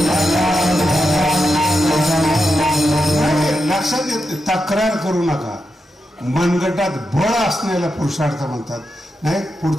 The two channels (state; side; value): normal; both; correlation 0.87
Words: लक्षात येत. तक्रार करू नका. मनगटात बळ असण्याला पुरुषार्थ म्हणतात. नाही,